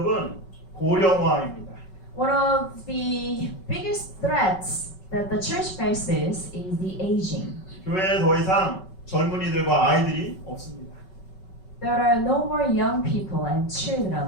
고령화입니다. One of the biggest threats that the church faces is the aging. 교회에 더 이상 젊은이들과 아이들이 없습니다. There are no more young people and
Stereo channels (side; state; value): right; late; 5.3 ms